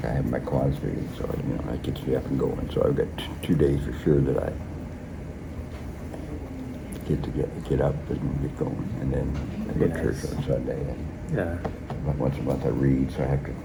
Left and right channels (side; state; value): both; identical; correlation 1.00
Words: I have my Kiwanis meeting, so that gets me up and going. So I've got 2 days for sure that I get up and get going, and then I go to church on Sunday. And Yeah. once a month I read, so I have to